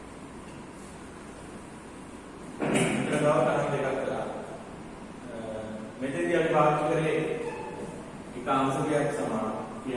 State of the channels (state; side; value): identical; both; correlation 1.00